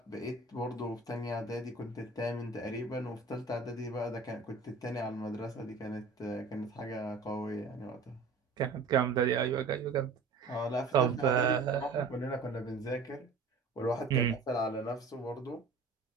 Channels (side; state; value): left; quieter; 4.2 dB